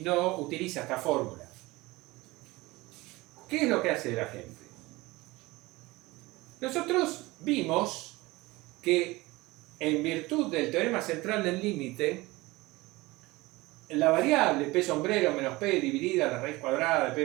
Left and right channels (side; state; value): left; quieter; 21.1 dB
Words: no utiliza esta fórmula. ¿Qué es lo que hace la gente? Nosotros vimos que en virtud del teorema central del límite, la variable p sombrero menos p dividida la raíz cuadrada de